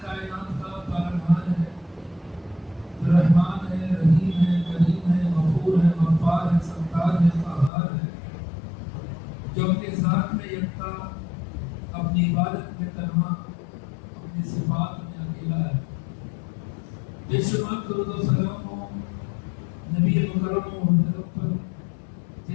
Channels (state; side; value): drops out; right; at 7.7 s